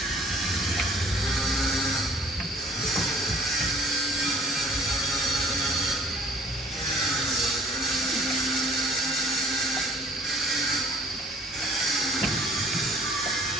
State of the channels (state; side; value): normal; both; correlation 0.55